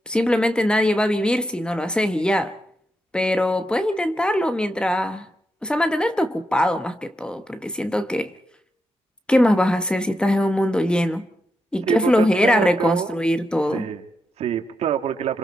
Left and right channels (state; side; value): normal; both; correlation 0.85